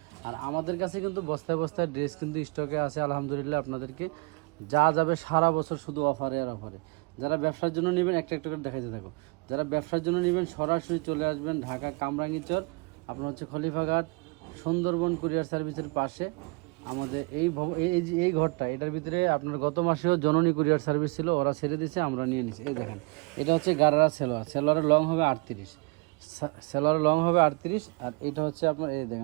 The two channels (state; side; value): quieter; left; 29.9 dB